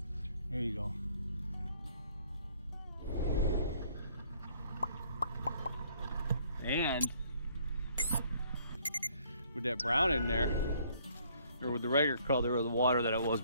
there you go. And with that brown in there, or with the regular color of the water that it was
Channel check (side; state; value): both; inverted; correlation -0.63